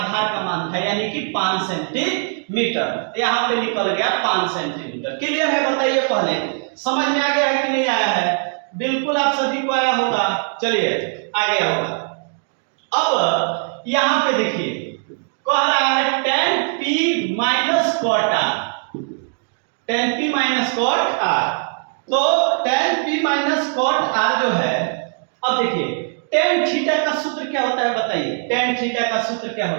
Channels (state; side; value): silent; left; 56 dB below the other